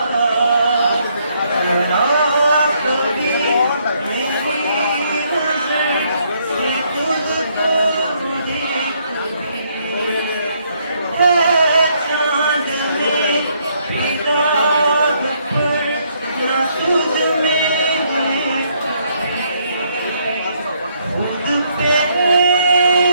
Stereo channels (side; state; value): both; inverted; correlation -0.71